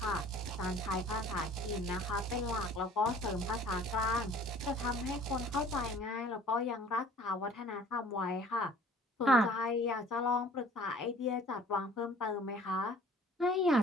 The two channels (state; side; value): normal; both; correlation 0.51